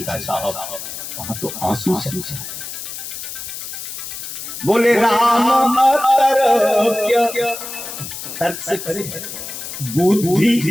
साहब, वहां तो आंसू चलता है। बोले राम तर्क से करे,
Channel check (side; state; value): left; noise; hiss, 9 dB below the sound